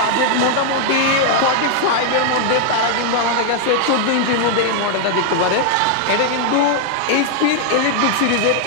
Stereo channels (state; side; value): different; both; correlation 0.00